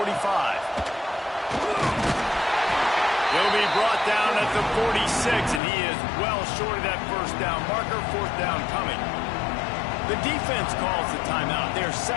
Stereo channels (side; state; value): right; drops out; at 5.6 s